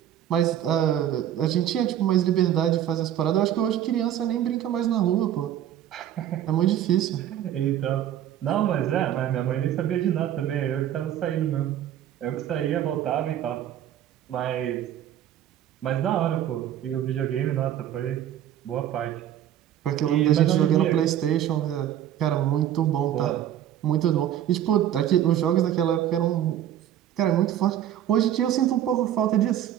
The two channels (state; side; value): quieter; left; 11.1 dB